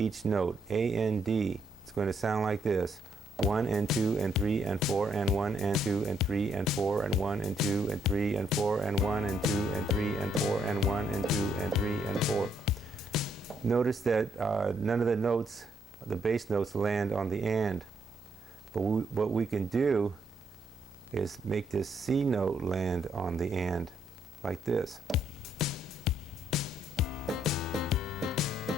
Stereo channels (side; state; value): both; normal; correlation 0.73